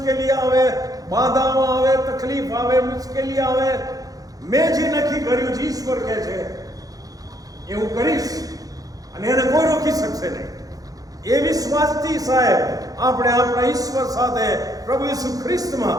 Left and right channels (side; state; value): left; late; 0.17 ms